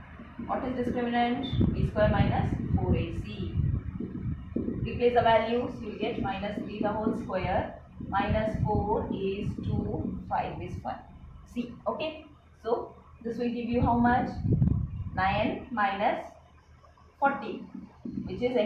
What is discriminant? B square minus 4ac. Replace the values, you will get minus 3 the whole square, minus 4 is 2, 5 is 1. C. Okay, so this will give you how much? 9 minus 40, which is,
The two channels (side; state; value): both; identical; correlation 1.00